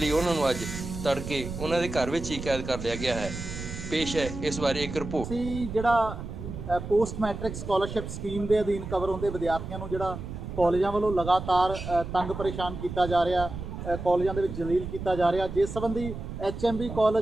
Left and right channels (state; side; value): noise; right; rumble, 8 dB below the sound